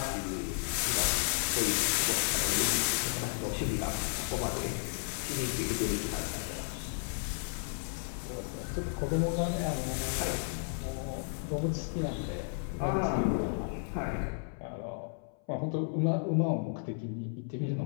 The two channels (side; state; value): right; silent; 56 dB below the other